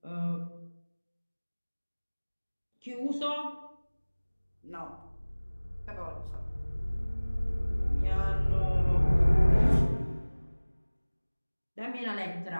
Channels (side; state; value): both; inverted; correlation -1.00